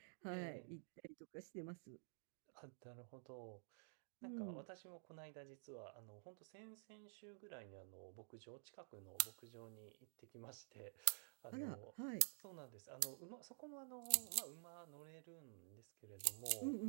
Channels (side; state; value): left; silent; digital silence